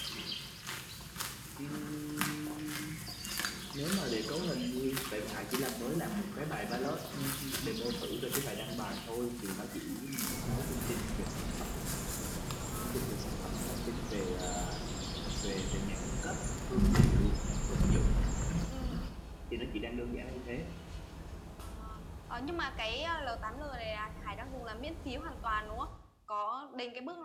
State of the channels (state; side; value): identical; both; correlation 1.00